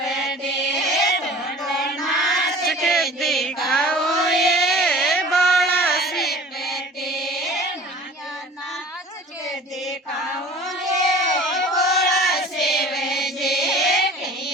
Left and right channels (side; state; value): both; normal; correlation 0.44